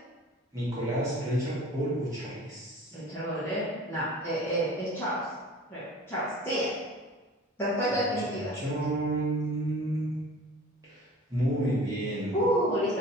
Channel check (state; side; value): normal; both; correlation 0.43